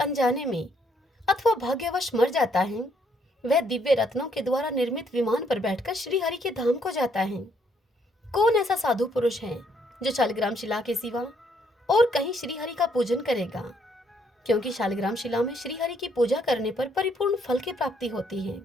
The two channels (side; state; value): both; normal; correlation 0.70